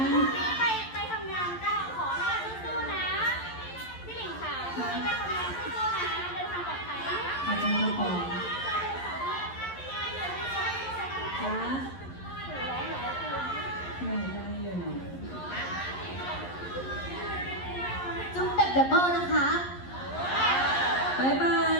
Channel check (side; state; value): right; late; 11 ms